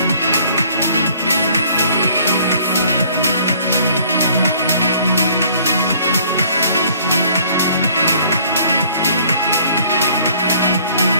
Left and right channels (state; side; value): inverted; both; correlation -0.58